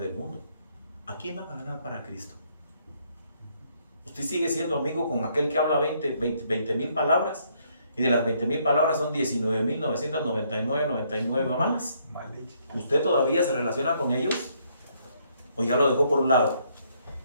del mundo. ¿A quién van a ganar para Cristo? Usted sigue siendo amigo con aquel que habla 20,000 palabras, y de las 20,000 palabras son 19,999 malas. ¿Usted todavía se relaciona con ellos? ¿O ya lo dejó por un lado?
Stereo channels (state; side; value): inverted; both; correlation -0.70